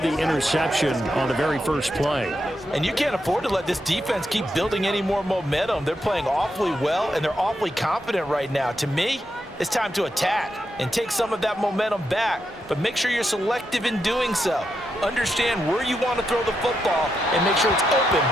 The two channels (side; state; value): both; normal; correlation 0.84